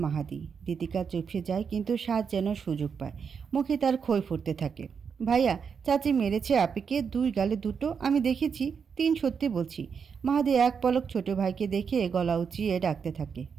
মাহাদি। দীতিকা চুপসে যায়, কিন্তু সাজ যেন সুযোগ পায়। মুখে তার খই ফুটতে থাকে। ভাইয়া, চাচি মেরেছে আপিকে, 2 গালে 2টো। আমি দেখেছি, 3 সত্যি বলছি। মাহাদি এক পলক ছোট ভাইকে দেখে গলা উঁচিয়ে ডাকতে থাকে,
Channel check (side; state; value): left; quieter; 6.4 dB